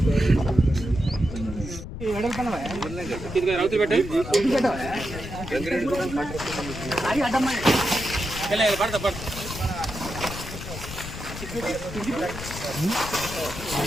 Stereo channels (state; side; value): noise; left; rumble, 9 dB below the sound